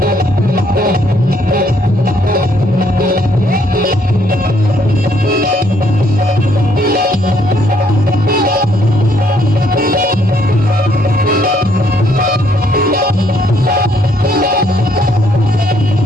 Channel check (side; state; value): both; normal; correlation 0.68